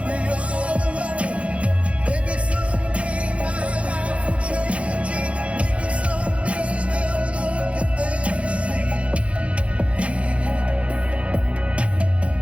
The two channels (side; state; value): left; late; 0.062 ms